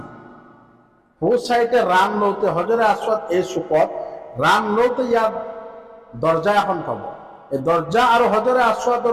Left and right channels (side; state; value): both; identical; correlation 1.00